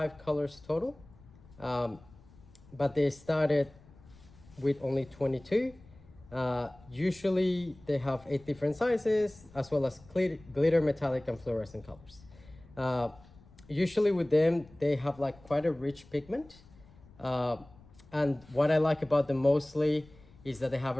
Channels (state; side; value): noise; left; rumble, 24 dB below the sound